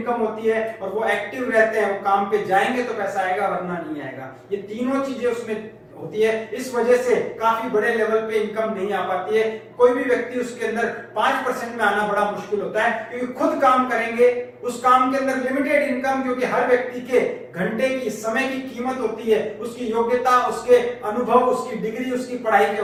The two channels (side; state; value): both; identical; correlation 1.00